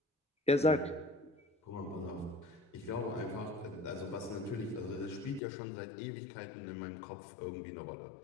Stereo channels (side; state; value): right; drops out; at 5.4 s